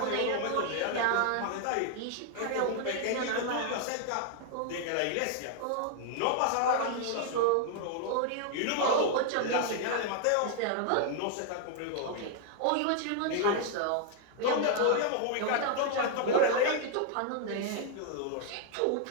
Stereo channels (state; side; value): different; both; correlation 0.00